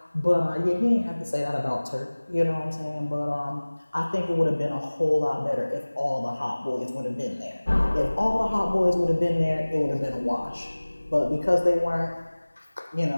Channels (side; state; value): both; inverted; correlation -1.00